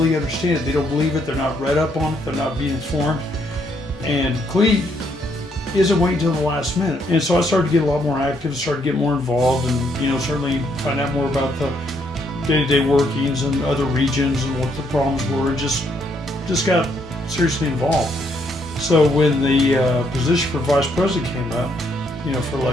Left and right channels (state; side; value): normal; both; correlation 0.73